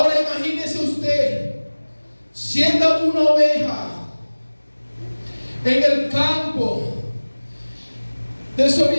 imagínese usted siendo una oveja en el campo,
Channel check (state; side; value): inverted; both; correlation -1.00